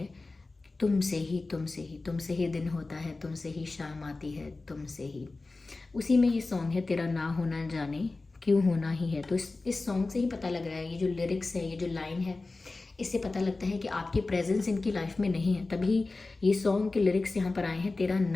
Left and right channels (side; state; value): right; quieter; 3.4 dB